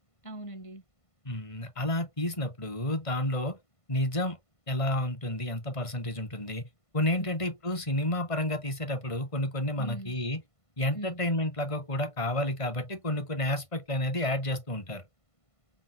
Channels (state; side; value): late; right; 1.5 ms